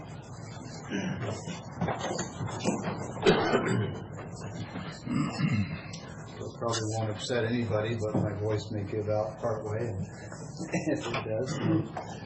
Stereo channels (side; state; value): both; identical; correlation 1.00